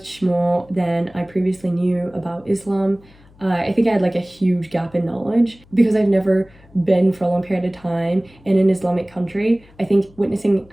more than I previously knew about Islam. I think I had like a huge gap in knowledge because I've never been for a long period of time in an Islamic country. I think witnessing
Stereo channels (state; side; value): noise; left; hum, 27 dB below the sound